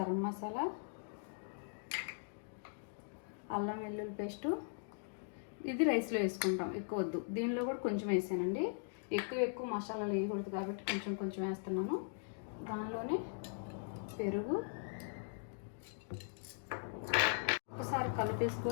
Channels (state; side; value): silent; right; digital silence